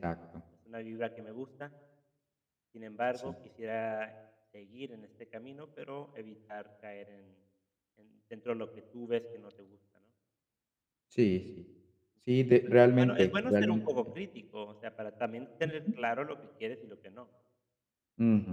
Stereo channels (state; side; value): identical; both; correlation 1.00